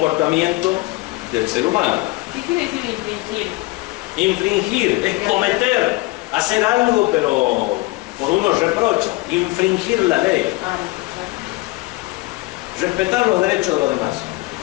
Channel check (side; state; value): right; quieter; 22.0 dB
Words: del ser humano. ¿Qué quiere decir infringir? Infringir es cometer, hacer algo, pero por uno reprocha. Infringir la ley. Respetar los derechos de los demás.